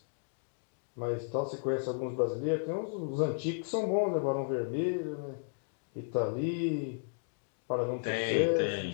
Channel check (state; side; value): silent; right; digital silence